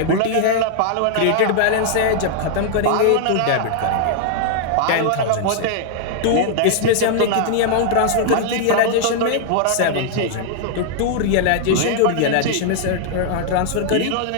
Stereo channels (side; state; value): both; different; correlation -0.01